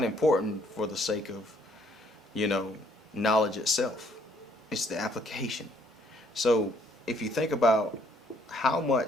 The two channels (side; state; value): both; normal; correlation 0.65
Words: important for the sake of, you know, knowledge itself. It's the application. So if you think about how